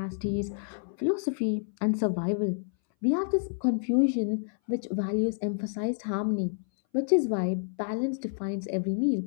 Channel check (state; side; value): silent; right; 59 dB below the other